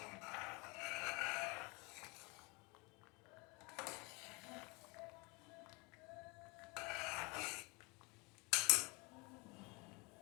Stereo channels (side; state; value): right; quieter; 27.7 dB